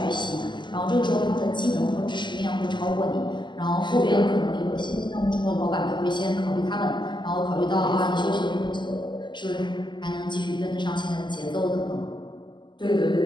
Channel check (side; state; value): right; late; 0.22 ms